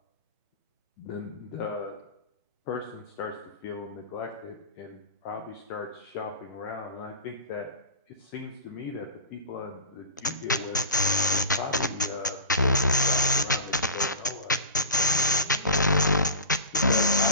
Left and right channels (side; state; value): both; inverted; correlation -0.34